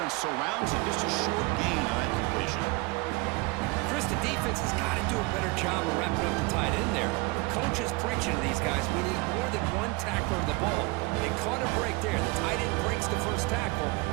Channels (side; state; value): left; quieter; 25.3 dB